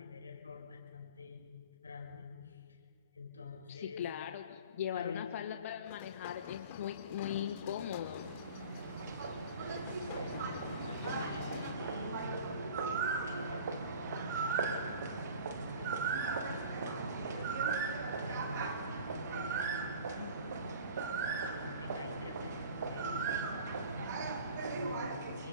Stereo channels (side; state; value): both; inverted; correlation -0.42